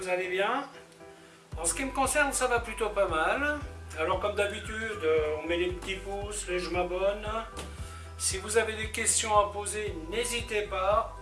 allez bien. En ce qui me concerne, ça va plutôt pas mal. Alors comme d'habitude, on met les petits pouces, les je m'abonne. Si vous avez des questions à poser, n'hésitez pas.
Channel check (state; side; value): identical; both; correlation 1.00